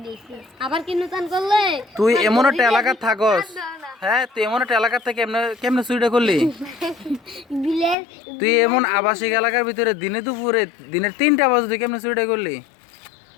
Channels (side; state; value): right; drops out; at 8.0 s